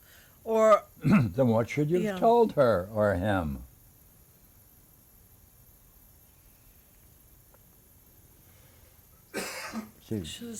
Or Then what should you have Yeah. told her or him? See, Should have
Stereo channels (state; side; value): identical; both; correlation 1.00